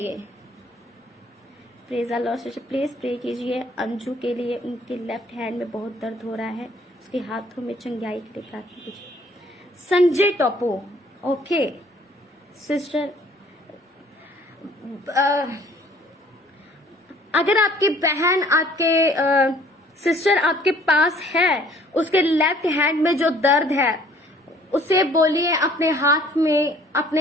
Praise the lord. Please pray कीजिए अंजू के लिए, उनके लेफ्ट हैंड में बहुत दर्द हो रहा है, उसके हाथों में चंगाई के लिए प्रार्थना कीजिए। संजय टोपो, ओके सिस्टर, अगर आपकी बहन, आपके सिस्टर आपके पास है, उसके लेफ्ट हैंड में जो दर्द है उसे बोलिए अपने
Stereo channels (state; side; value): normal; both; correlation 0.57